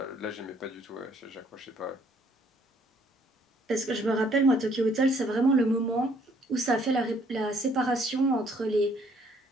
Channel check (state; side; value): normal; both; correlation 0.64